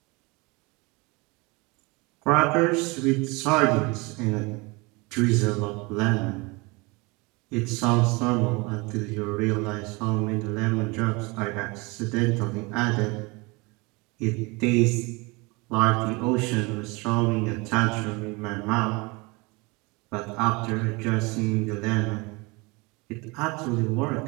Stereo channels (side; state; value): left; quieter; 26.4 dB